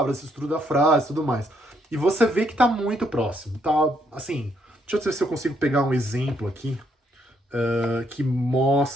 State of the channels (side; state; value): both; normal; correlation 0.73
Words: estrutura da frase e tudo mais. E você vê que tá muito próximo, tá? Assim, deixa eu ver se eu consigo pegar um exemplo aqui que